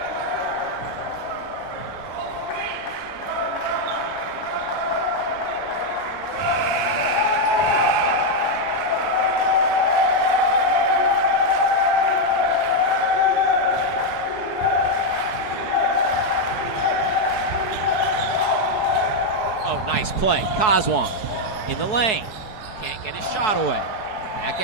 Nice play. Kazwan in the lane. Can't get his shot away. Back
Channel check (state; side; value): late; right; 4.7 ms